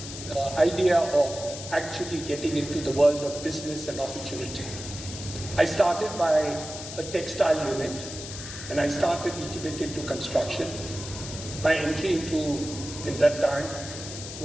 idea of actually getting into the world of business and opportunity. I started by a textile unit, and I started a little bit into construction. My entry into, in that time,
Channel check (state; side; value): noise; left; hiss, 10 dB below the sound